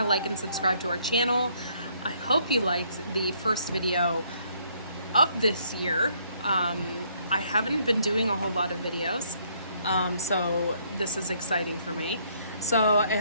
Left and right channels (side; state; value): both; inverted; correlation -0.67